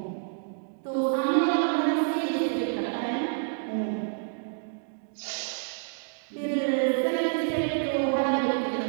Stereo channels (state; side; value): silent; left; digital silence